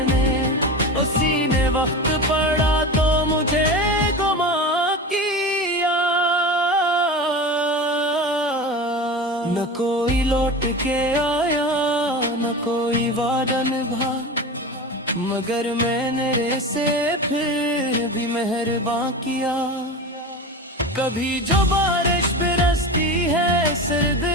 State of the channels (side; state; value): both; normal; correlation 0.28